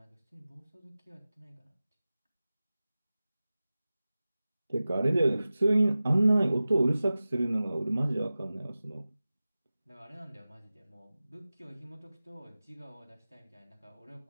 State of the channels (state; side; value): inverted; both; correlation -0.96